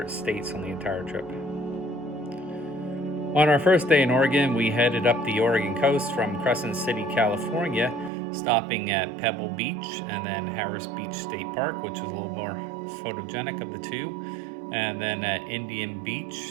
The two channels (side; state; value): left; drops out; at 8.1 s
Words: states on the entire trip. On our first day in Oregon, we headed up the Oregon coast from Crescent City, California, stopping at Pebble Beach and then Harris Beach State Park, which was a little more photogenic of the two, and then at Indian